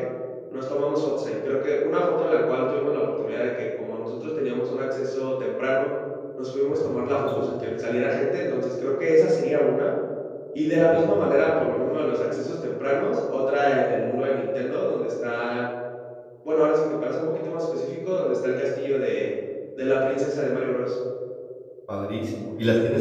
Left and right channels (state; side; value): identical; both; correlation 1.00